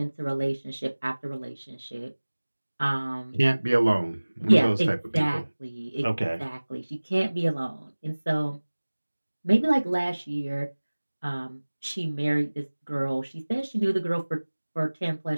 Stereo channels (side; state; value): both; inverted; correlation -1.00